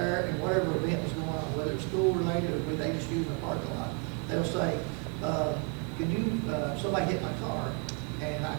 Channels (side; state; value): left; quieter; 35.6 dB